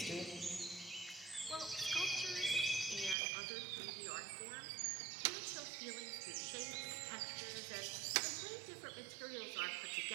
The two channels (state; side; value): drops out; left; at 3.2 s